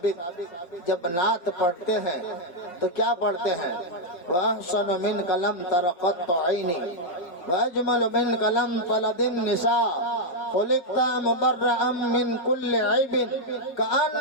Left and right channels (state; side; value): late; right; 5.5 ms